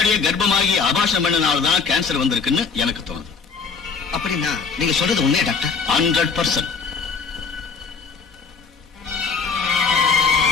கர்ப்பமாகி அபாஷம் பண்ணனால்தான் கேன்சர் வந்திருக்குன்னு எனக்கு தோணுது. அப்படின்னா நீங்க சொல்றது உண்மையா டாக்டர்? 100%.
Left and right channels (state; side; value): quieter; right; 5.2 dB